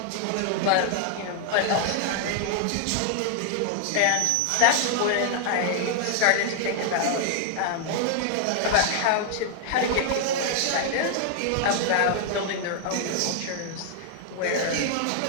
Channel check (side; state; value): both; different; correlation 0.00